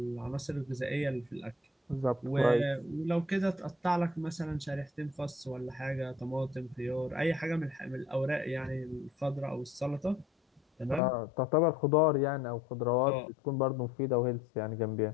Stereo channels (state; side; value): drops out; right; at 11.0 s